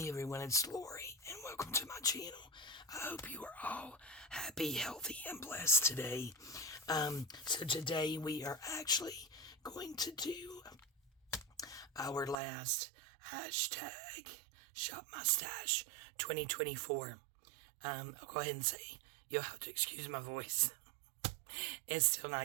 everyone, it's Lori, and welcome to my channel. I hope you are all happy, healthy, and blessed today. So today we are actually going to do our last hashtag Shop My Stash 2024. I'll go ahead and say you'll have to excuse my voice. It's still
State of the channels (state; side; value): drops out; left; at 12.4 s